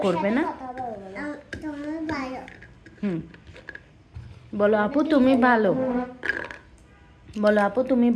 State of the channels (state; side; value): identical; both; correlation 1.00